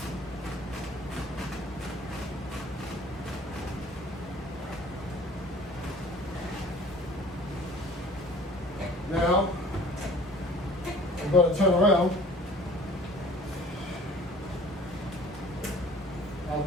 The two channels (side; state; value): both; normal; correlation 0.48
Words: Now, I'm going to turn around. I'll